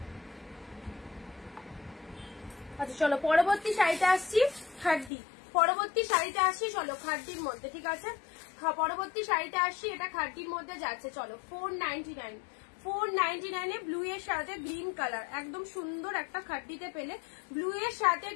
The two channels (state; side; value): drops out; right; at 5.1 s